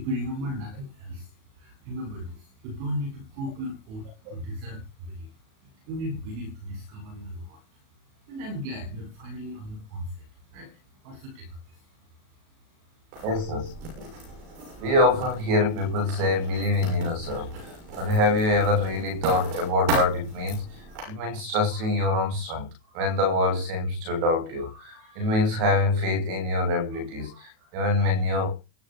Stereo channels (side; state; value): left; late; 37 ms